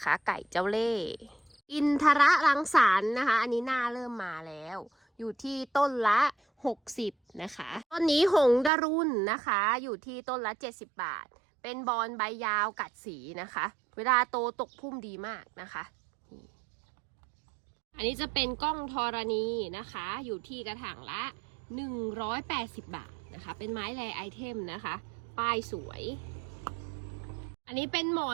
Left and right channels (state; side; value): drops out; left; at 8.7 s